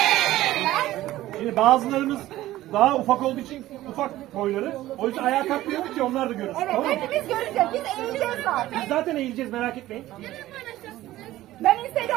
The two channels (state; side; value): quieter; left; 15.5 dB